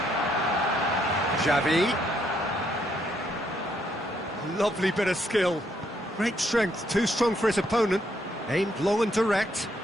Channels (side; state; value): both; normal; correlation 0.73